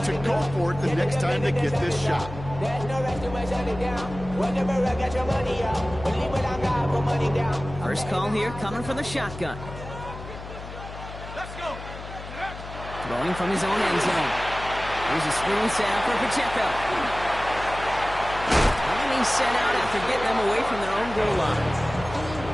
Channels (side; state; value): left; noise; hum, 12 dB below the sound